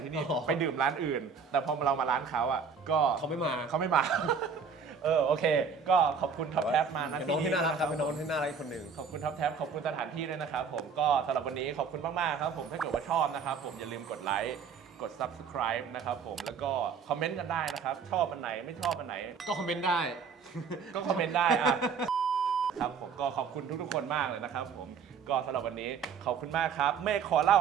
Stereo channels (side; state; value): left; quieter; 6.0 dB